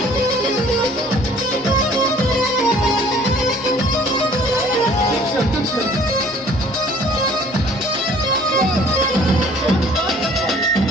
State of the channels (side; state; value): both; normal; correlation 0.54